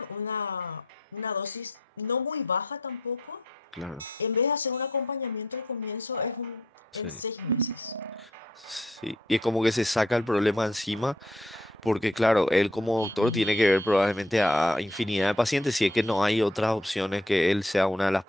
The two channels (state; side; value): normal; both; correlation 0.67